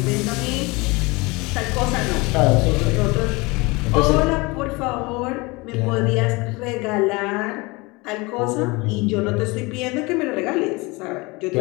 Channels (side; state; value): right; quieter; 24.9 dB